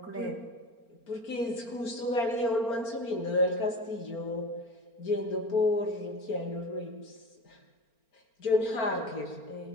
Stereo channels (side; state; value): right; late; 4.4 ms